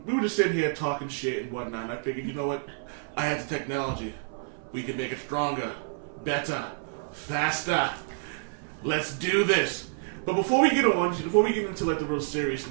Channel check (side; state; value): left; silent; 59 dB below the other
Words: we were just sitting here talking shit and whatnot, and I figured, you know what? I had the technology. We can make it stronger, better, faster. Let's do this. But before we get into like the real